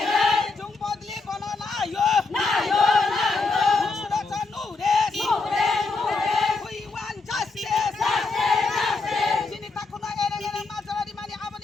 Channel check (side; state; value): right; quieter; 3.8 dB